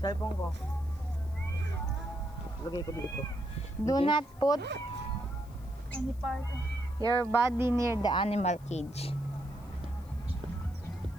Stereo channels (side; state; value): left; noise; hiss, 27 dB below the sound